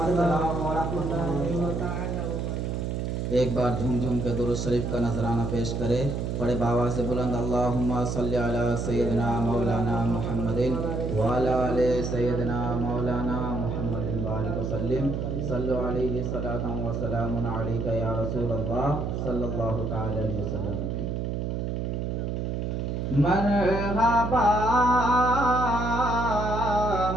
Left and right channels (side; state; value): right; noise; hum, 2 dB below the sound